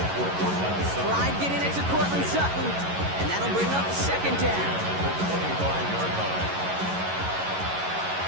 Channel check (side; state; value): left; late; 11 ms